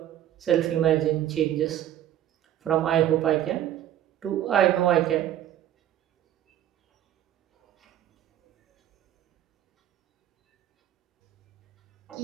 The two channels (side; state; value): left; quieter; 11.9 dB